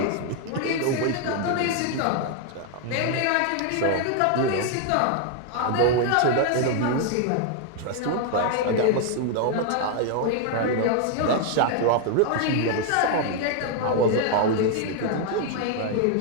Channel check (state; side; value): different; both; correlation 0.00